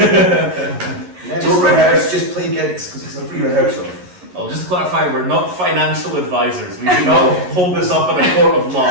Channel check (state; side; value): late; left; 11 ms